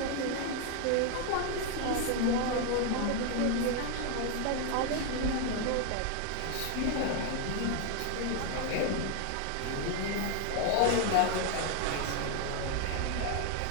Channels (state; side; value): different; both; correlation 0.01